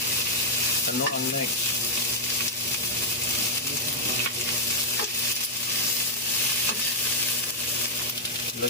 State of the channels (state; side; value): normal; both; correlation -0.04